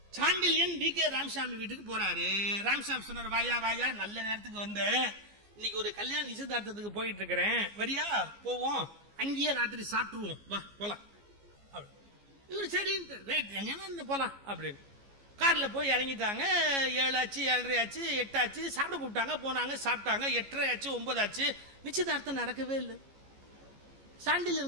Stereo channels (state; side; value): late; left; 15 ms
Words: சாண்டில்யன் வி.கே. ராமசாமி வீட்டுக்கு போறாரு. ராமசாமி சொன்னார், வாயா வாயா, நல்ல நேரத்துக்கு வந்த, இன்னைக்கு ஒரு கல்யாண நிச்சயதார்த்தத்துக்கு போயிட்டு இருக்கிறேன், வரியா போவோம், அங்கேயே ராத்திரி சாப்பிட்டுருவோம், வா போலாம். இவரு சரி எங்க போலாம் அப்படின்னு கார்ல போய் இறங்கிட்டாங்க. 7 ஆச்சு, 7:30 ஆச்சு, 8 ஆச்சு. சாப்பிட கூப்பிட்டாங்க, போனாங்க, சாப்பிட்டாங்க. 8:30 ஆச்சு, 9 ஆச்சு. நிச்சயதார்த்தம் நடக்கவே இல்லை.